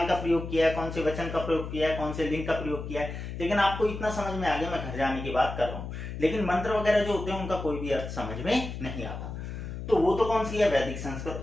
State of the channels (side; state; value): left; noise; hum, 7 dB below the sound